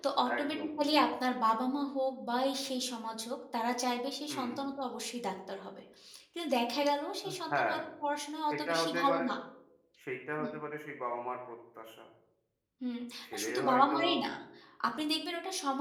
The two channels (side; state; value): both; identical; correlation 1.00